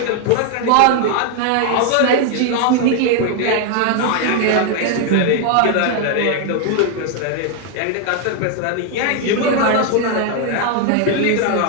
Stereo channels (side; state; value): both; different; correlation 0.00